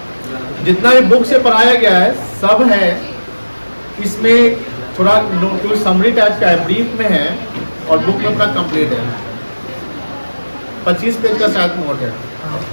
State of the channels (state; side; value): inverted; both; correlation -1.00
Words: जितना भी बुक से पढ़ाया गया है सब है इसमें। थोड़ा नोट समरी टाइप का है, ब्रीफ में है, और बुक में अपना कंप्लीट है। 25 पेज का शायद नोट है।